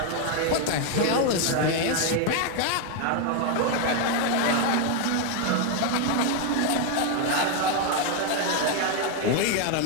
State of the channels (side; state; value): both; different; correlation 0.01